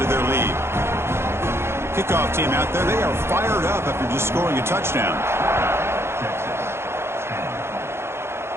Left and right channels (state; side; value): late; left; 0.12 ms